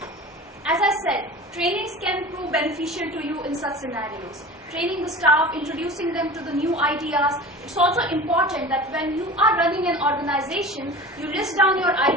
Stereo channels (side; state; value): both; normal; correlation 0.35